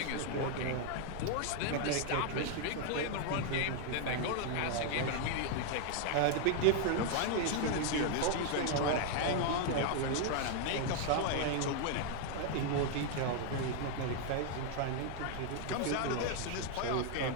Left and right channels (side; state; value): both; different; correlation 0.00